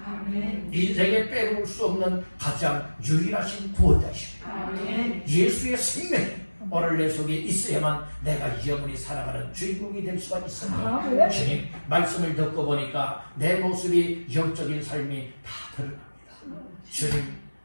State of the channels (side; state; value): both; inverted; correlation -1.00